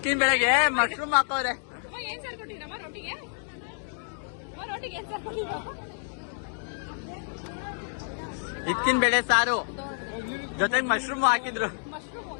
ಬೆಳಗ್ಗೆ ಮಶ್ರೂಮ್ ಹಾಕೋರೆ ಏನ್ ಸಾರ್ ಕೊಟ್ಟಿರಮ್ಮ ರೋಟಿಗೆ ರೋಟಿಗೆ ಏನ್ ಸಾರ್ ಕೊಟ್ಟಿರಮ್ಮ ಇದ್ಕಿನ್ ಬೆಳೆ ಸಾರು ಜೊತೆಗೆ ಮಶ್ರೂಮ್ ಹಾಕಿದ್ರು ಮಶ್ರೂಮ್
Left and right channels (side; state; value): right; silent; 59 dB below the other